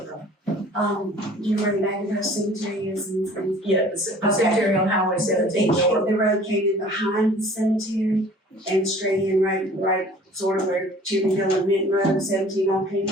know where the Macintosh Cemetery is and Yeah, the cemetery on Highway 17 north. the road came in behind the cemetery and straight in right sort of where Cherry Hill and Minton Road, 17 all came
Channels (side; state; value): both; normal; correlation 0.49